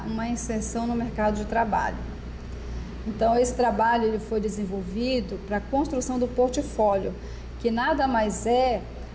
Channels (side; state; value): both; identical; correlation 1.00